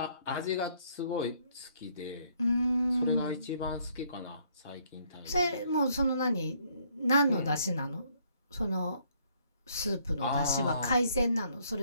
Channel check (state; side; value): inverted; both; correlation -0.67